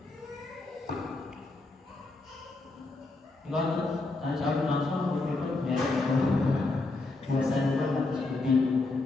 Kalau tanya jawab langsung biasanya harus lebih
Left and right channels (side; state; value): right; quieter; 3.2 dB